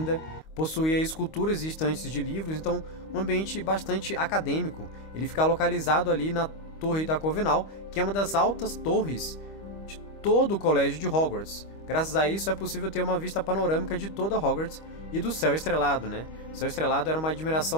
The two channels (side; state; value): right; late; 25 ms